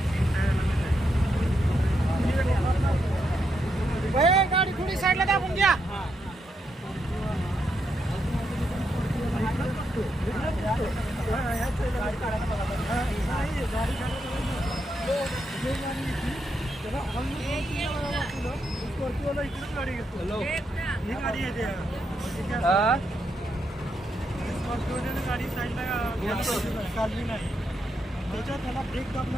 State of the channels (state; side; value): normal; both; correlation 0.81